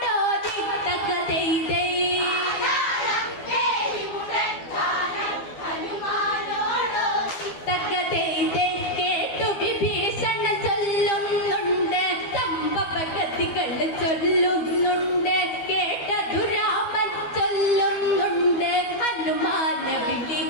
തക്കതെയ്തേ തക്കതെയ്തേ കേട്ടു വിഭീഷണ ചൊല്ലുന്നുണ്ട് സംഭവഗതികൾ ചൊല്ലുന്നുണ്ട് കേട്ടതു രാമൻ ചൊല്ലുന്നുണ്ട് ഹനുമാന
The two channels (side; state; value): right; late; 12 ms